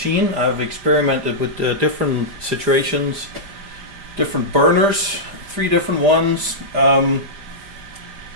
I've experimented with different situations, different burners, 3 different ones. Not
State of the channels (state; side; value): late; left; 5.0 ms